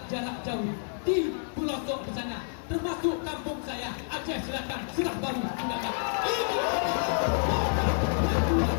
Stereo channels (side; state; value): right; silent; 59 dB below the other